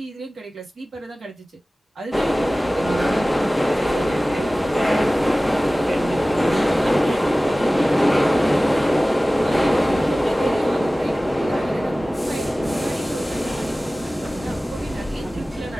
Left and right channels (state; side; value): normal; both; correlation 0.97